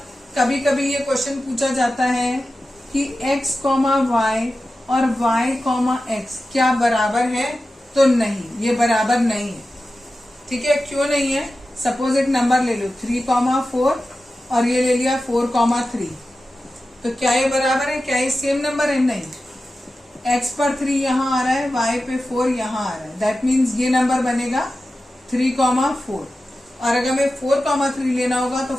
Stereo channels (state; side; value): normal; both; correlation 0.93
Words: कभी कभी ये क्वेश्चन पूछा जाता है कि x, y और y, x क्या बराबर है? तो नहीं, ये बराबर नहीं है। ठीक है, क्यों नहीं है? सपोज एक नंबर ले लो 3, 4 और ये ले लिया 4, 3। तो क्या ये बराबर है? क्या ये सेम नंबर है? नहीं। x पर 3 यहाँ आ रहा है, y पे 4 यहाँ आ रहा है। दैट मीन्स ये नंबर बनेगा 3, 4। और अगर मैं 4, 3 लेना होगा तो